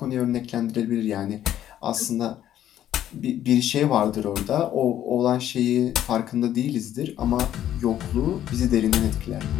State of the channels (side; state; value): right; quieter; 11.5 dB